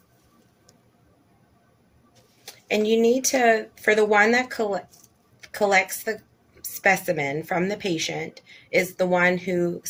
And you need to, for the one that collects the specimen from the patient, is the one who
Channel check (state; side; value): identical; both; correlation 1.00